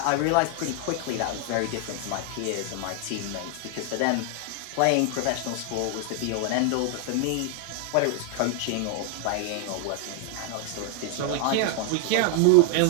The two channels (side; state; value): both; different; correlation 0.00